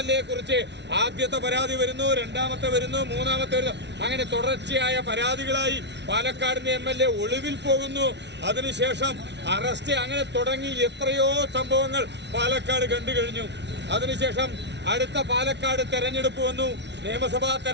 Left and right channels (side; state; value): left; late; 0.50 ms